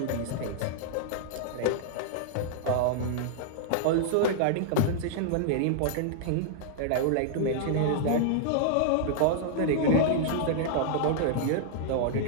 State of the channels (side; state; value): both; different; correlation -0.01